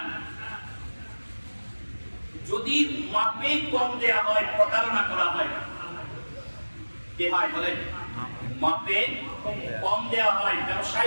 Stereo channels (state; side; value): inverted; both; correlation -1.00